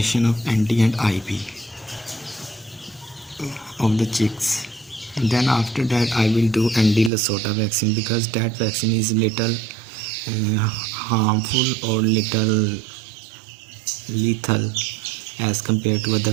of ND and IP of the chicks. And then after that I will do ND Lasota vaccine, because that vaccine is little harmful or little lethal as compared to other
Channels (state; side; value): drops out; left; at 7.1 s